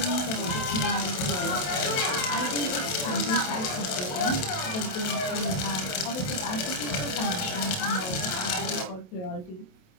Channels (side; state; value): right; late; 27 ms